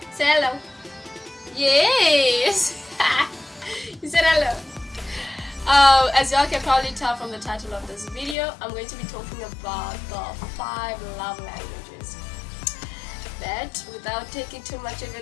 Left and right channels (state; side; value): drops out; right; at 8.3 s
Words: Say hello. Yes. You said hello. As y'all can probably tell from the title of this video, I'm going to be talking about the 5 love languages. But without taking too much of